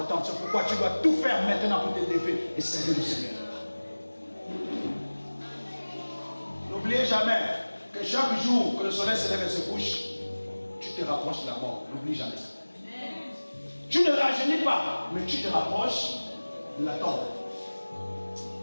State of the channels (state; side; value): inverted; both; correlation -1.00